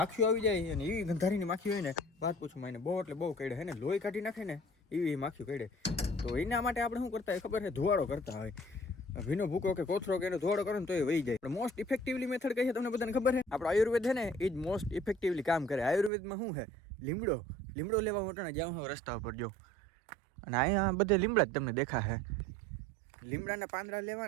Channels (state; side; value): drops out; left; at 16.1 s